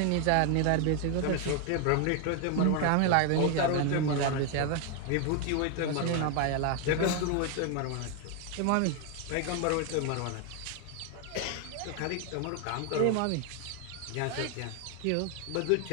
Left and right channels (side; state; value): both; different; correlation 0.01